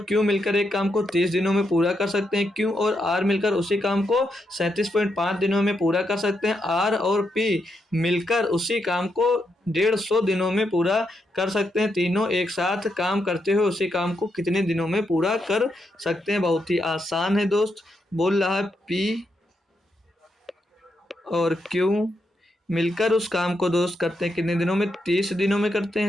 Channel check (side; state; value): both; normal; correlation 0.82